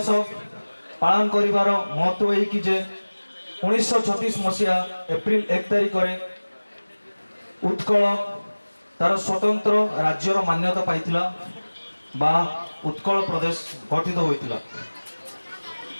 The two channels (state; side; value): inverted; both; correlation -1.00